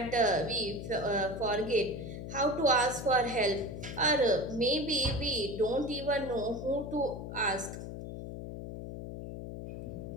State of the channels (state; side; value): noise; left; hum, 8 dB below the sound